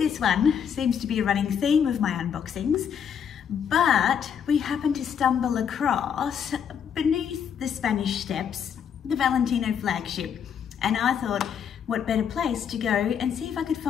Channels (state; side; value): quieter; right; 7.9 dB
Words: one, seems to be a running theme of my unboxings, but we happened to stumble across beneath the Spanish Steps, the Valentino Flagship, and I thought, what better place to go and see if I could